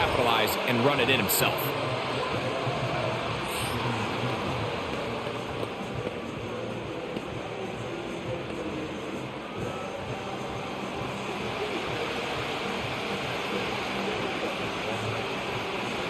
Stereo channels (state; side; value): identical; both; correlation 1.00